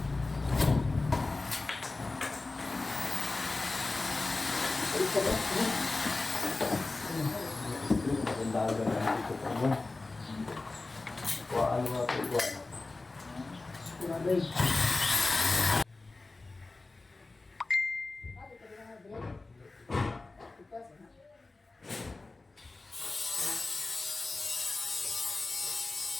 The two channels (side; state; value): right; quieter; 3.4 dB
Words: Daga na dito pa mo. Kuhaan mo ito, kuhaan.